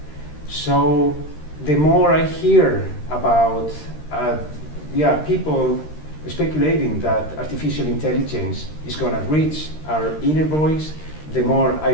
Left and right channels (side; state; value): right; late; 13 ms